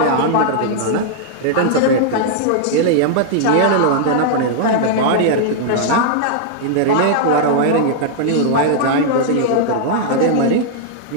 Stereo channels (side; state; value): both; different; correlation -0.01